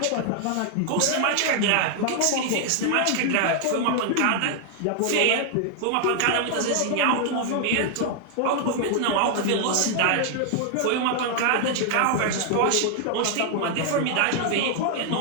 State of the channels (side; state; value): both; different; correlation 0.00